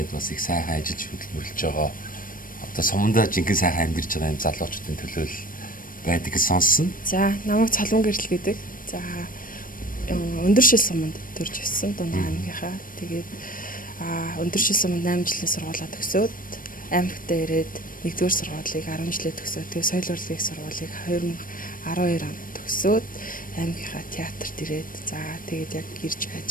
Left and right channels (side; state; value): right; late; 0.40 ms